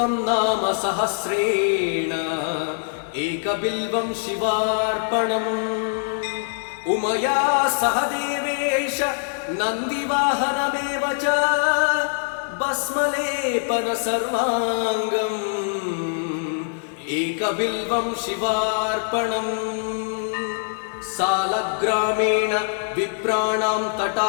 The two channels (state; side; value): silent; right; 63 dB below the other